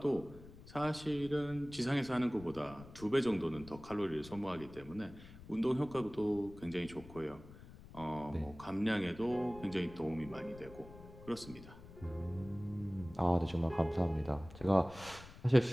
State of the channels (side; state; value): left; noise; rumble, 17 dB below the sound